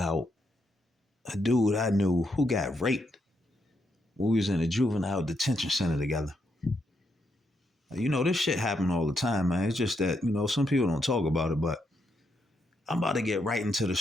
a dude I knew who got raped when we was in a juvenile detention center together. This shit happen all the time, man. It's just that, some people don't talk about it, but I'm about to get right into the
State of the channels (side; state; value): both; normal; correlation 0.79